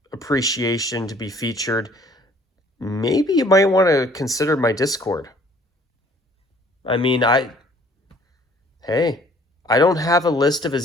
appreciation to be featured, maybe you might want to consider my Discord. I mean, hey, I don't have a list of a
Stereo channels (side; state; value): both; normal; correlation 0.57